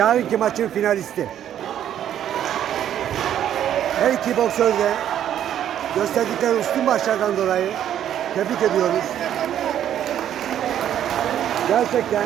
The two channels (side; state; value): left; quieter; 10.5 dB